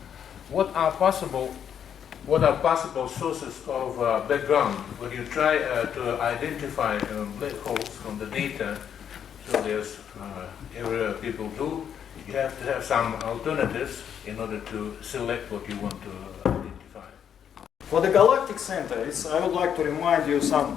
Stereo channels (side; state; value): right; quieter; 8.6 dB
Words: What are possible sources of background when you try to identify black holes from the data? So there's every people do. You have to have some alternatives in order to select what you want to identify. For the galactic center, I would like to remind you